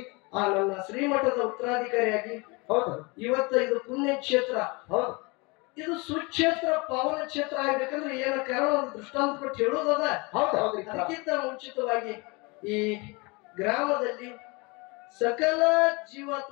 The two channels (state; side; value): quieter; right; 27.5 dB